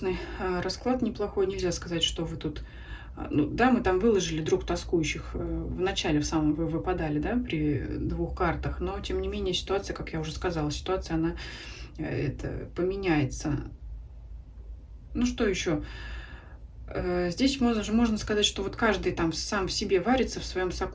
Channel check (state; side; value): identical; both; correlation 1.00